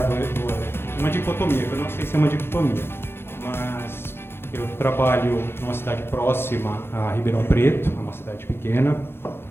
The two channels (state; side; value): late; right; 0.11 ms